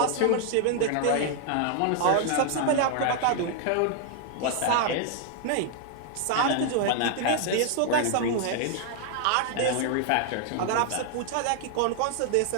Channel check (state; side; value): different; both; correlation 0.00